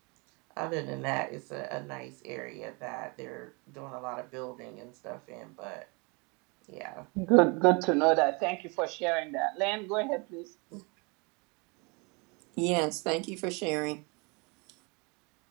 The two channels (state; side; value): quieter; left; 30.0 dB